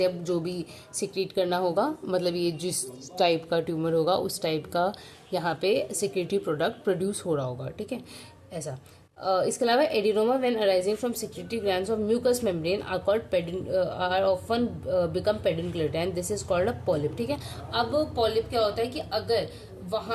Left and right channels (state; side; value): identical; both; correlation 1.00